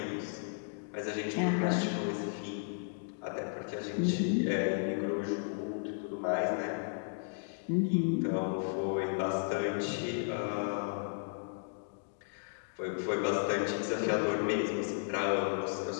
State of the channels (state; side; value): silent; right; digital silence